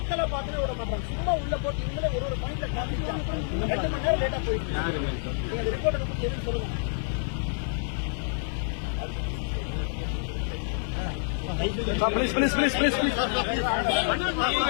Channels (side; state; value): right; silent; 57 dB below the other